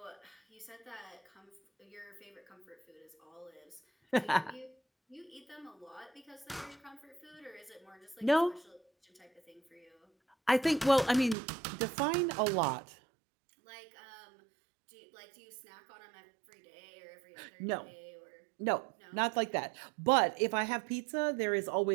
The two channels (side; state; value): left; drops out; at 11.4 s